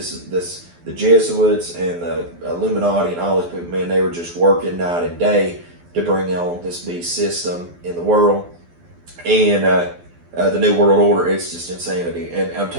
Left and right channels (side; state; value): left; late; 12 ms